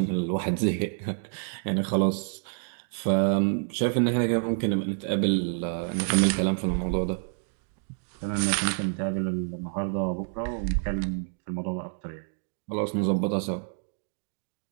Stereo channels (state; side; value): silent; left; 59 dB below the other